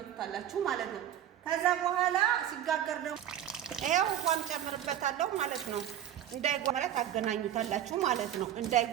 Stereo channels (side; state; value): left; quieter; 10.9 dB